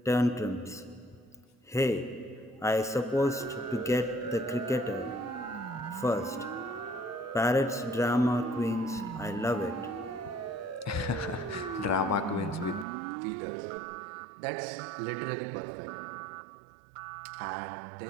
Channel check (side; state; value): left; drops out; at 12.9 s